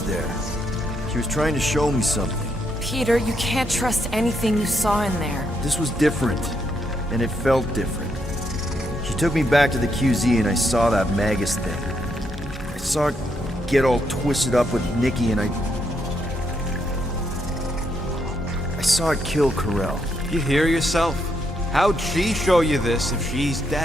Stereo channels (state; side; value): normal; both; correlation 0.77